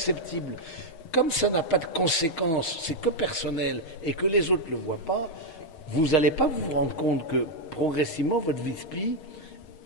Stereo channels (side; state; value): right; late; 6.3 ms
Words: comme ça n'a pas de conséquences, c'est que personnel et que les autres ne le voient pas, vous n'allez pas vous rendre compte que progressivement votre vie spi,